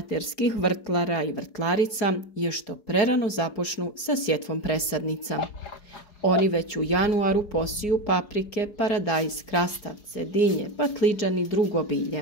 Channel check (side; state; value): right; late; 4.8 ms